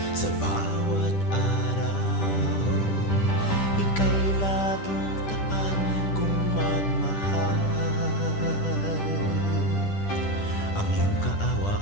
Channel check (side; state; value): right; late; 10 ms